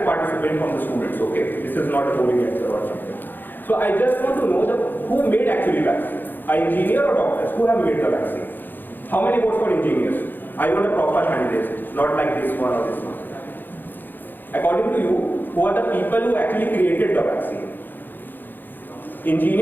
participant from the students, okay? This is not a boring answer or something. So I just want to know who made actually vaccine? An engineer or doctors? Who have made the vaccine? How many votes for engineers? I want a proper hand raised, not like this one or this one. According to you, who are the people who actually created the vaccine?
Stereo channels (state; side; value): late; right; 0.091 ms